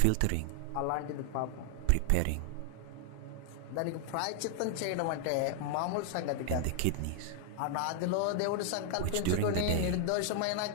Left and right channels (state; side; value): different; both; correlation 0.00